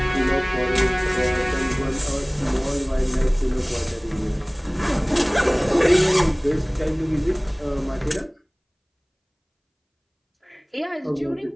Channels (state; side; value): identical; both; correlation 1.00